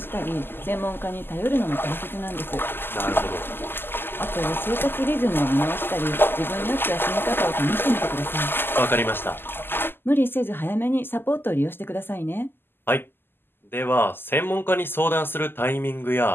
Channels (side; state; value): right; late; 0.10 ms